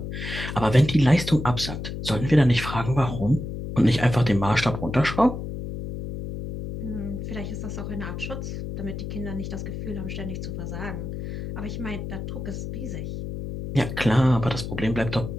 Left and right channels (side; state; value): left; noise; hum, 6 dB below the sound